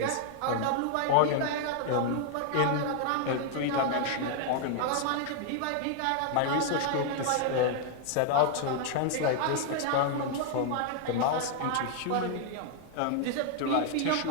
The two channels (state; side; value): different; both; correlation 0.00